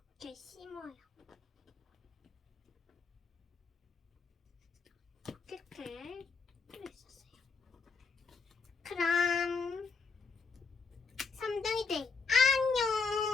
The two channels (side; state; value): right; quieter; 4.7 dB